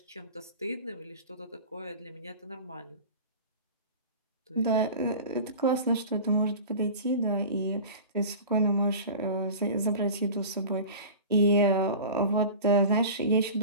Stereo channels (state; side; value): inverted; both; correlation -0.35